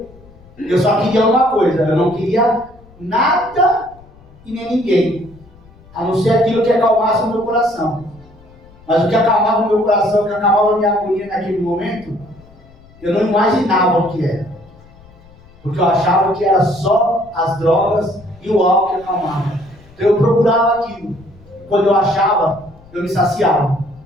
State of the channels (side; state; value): left; noise; rumble, 25 dB below the sound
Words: Eu só queria uma coisa, eu não queria nada e nem ninguém, a não ser aquilo que acalmasse o meu coração. Mas o que acalmava o meu coração, o que acalmava a minha agonia naquele momento, eu não imaginava o que era. Porque eu achava que era só as drogas e o álcool que acalmava. Então eu procurava aquilo. Quando eu achava, eu me saciava.